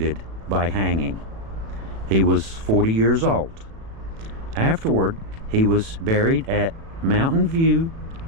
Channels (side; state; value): left; late; 36 ms